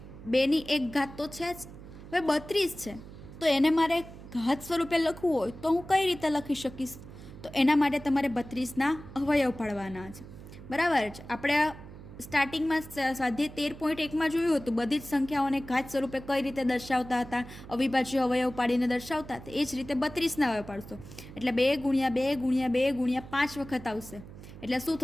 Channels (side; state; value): right; noise; hum, 15 dB below the sound